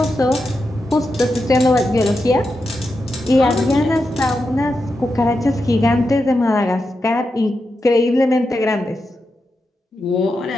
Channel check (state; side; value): normal; both; correlation 0.88